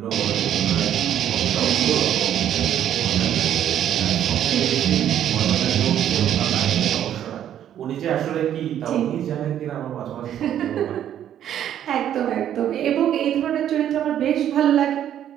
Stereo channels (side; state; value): left; quieter; 10.5 dB